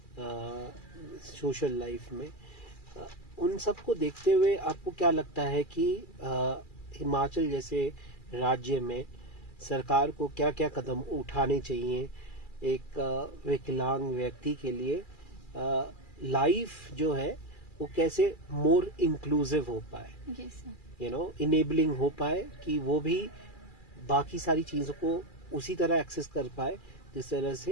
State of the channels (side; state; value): right; late; 2.4 ms